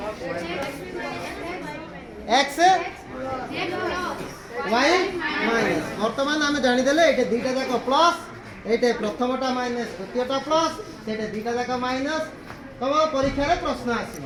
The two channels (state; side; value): identical; both; correlation 1.00